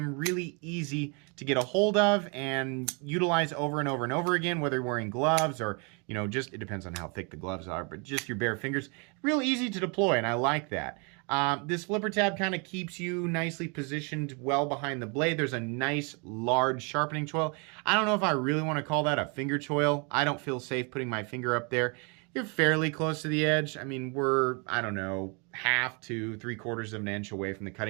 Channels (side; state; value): left; quieter; 33.5 dB